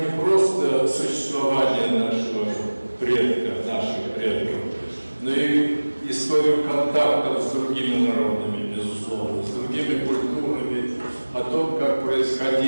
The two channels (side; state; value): both; inverted; correlation -1.00